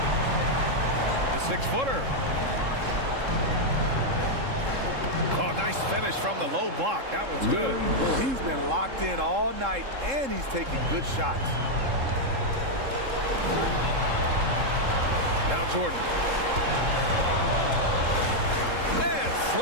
The 6-footer. Oh, nice finish from the low block. That was good. He's been locked in all night, and he's taking good shots. Now Jordan. And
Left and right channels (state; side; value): late; left; 3.7 ms